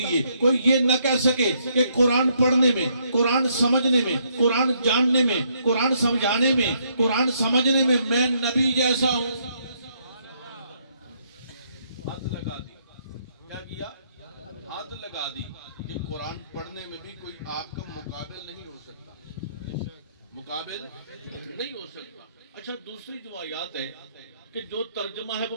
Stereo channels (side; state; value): both; inverted; correlation -0.72